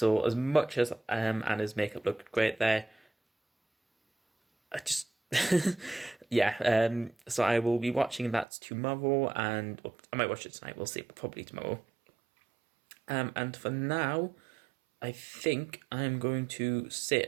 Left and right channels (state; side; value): drops out; left; at 8.5 s